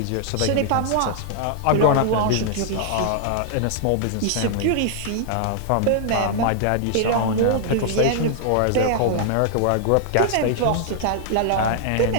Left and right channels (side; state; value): both; different; correlation -0.01